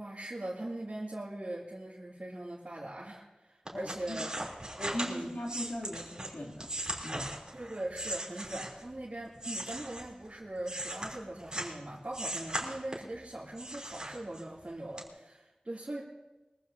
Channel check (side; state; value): both; normal; correlation 0.76